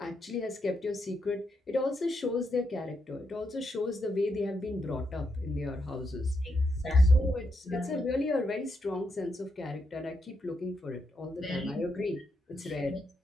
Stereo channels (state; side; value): normal; both; correlation 0.81